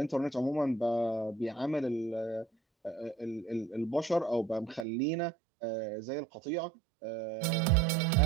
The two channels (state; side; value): drops out; left; at 4.9 s